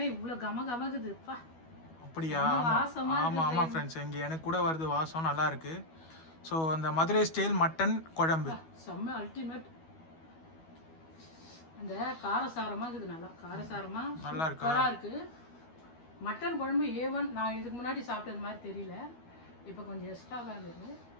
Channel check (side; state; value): right; late; 12 ms